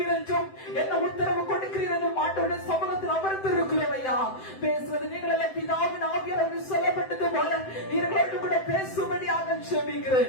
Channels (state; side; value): late; right; 7.8 ms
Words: என்றும் என்ன உத்தரவு கொடுக்கிறீர் என்றும் ஆண்டவருடைய சமூகத்தில் அமர்ந்து இருக்கிறோம் ஐயா. பேசுவது நீங்கள் எல்லாம் பிதாவின் ஆவியானவர் சொல்லப்பட்டது போல நீங்களோடு கூட பேசும்படியாக செபிக்கிறேன்.